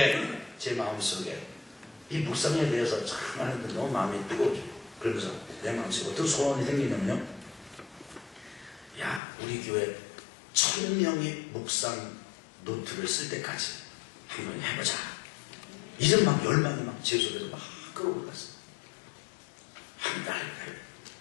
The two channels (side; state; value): right; drops out; at 9.2 s